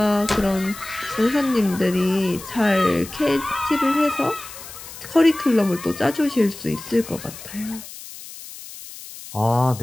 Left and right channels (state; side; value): noise; left; hiss, 14 dB below the sound